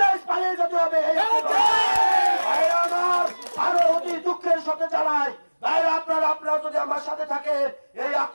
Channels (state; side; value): inverted; both; correlation -1.00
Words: পালিয়ে যেতে হবে। আরো অতি দুঃখের সাথে জানাই আপনারা যদি আমার সাথে থাকে এই